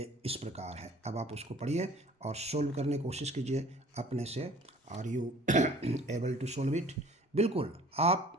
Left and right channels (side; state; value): both; normal; correlation 0.51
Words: इस प्रकार है। अब आप उसको पढ़िए और सोल्व करने की कोशिश कीजिए अपने से। Are you able to solve it? बिल्कुल आप